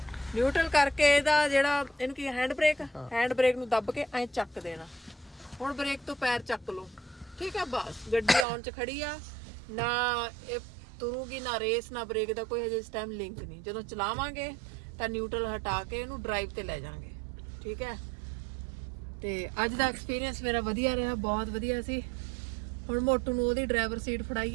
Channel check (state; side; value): drops out; left; at 8.5 s